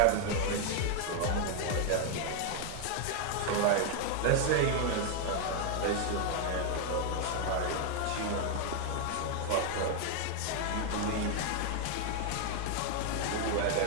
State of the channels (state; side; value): different; both; correlation 0.00